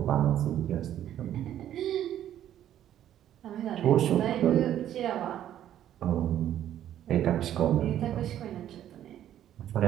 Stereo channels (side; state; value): left; quieter; 11.3 dB